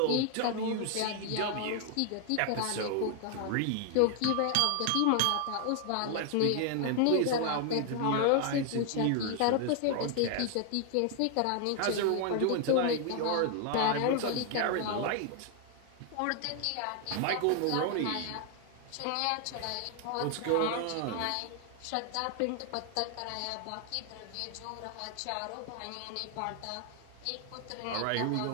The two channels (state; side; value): different; both; correlation 0.00